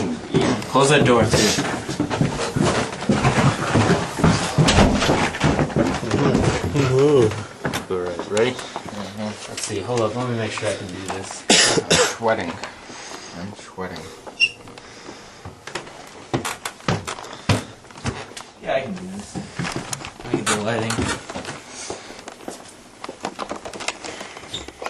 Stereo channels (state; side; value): identical; both; correlation 1.00